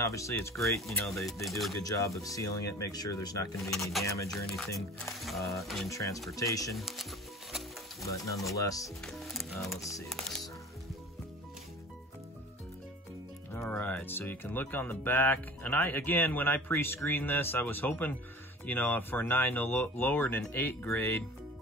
it's great. You know, they do a good job of sealing it, make sure there's not going to be any damage or anything in transportation. But nonetheless, let's see this. All right, so you can look on the back. And again, when I pre-screened this, I was hoping, you know, for a 9 no lower than an 8 grade.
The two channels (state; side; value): normal; both; correlation 0.41